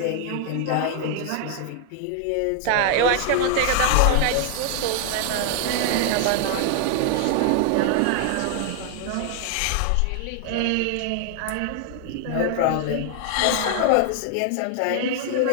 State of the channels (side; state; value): both; different; correlation 0.00